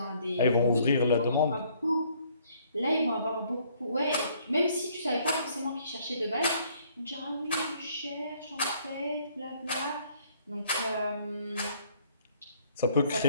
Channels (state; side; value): inverted; both; correlation -0.63